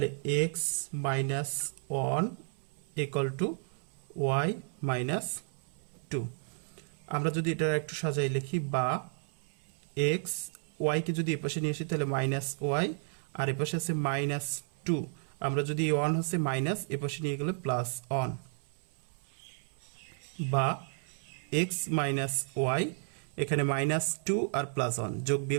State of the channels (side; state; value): left; silent; 56 dB below the other